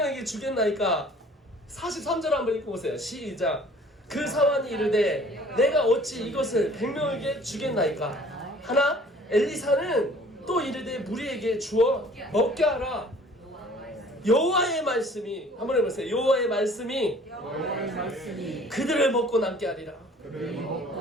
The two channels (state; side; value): normal; both; correlation 0.52